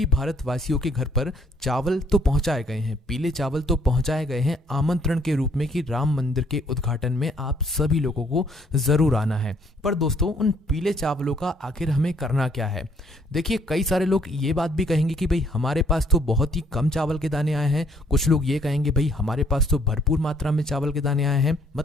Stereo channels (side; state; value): both; normal; correlation 0.64